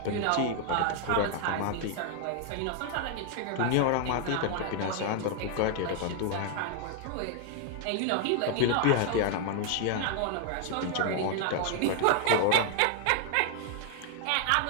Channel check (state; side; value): different; both; correlation 0.00